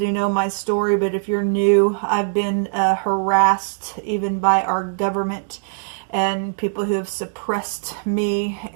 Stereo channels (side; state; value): left; silent; digital silence